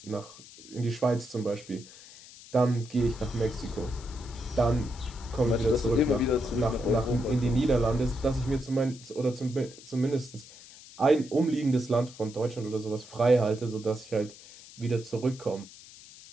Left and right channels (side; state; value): left; noise; hiss, 19 dB below the sound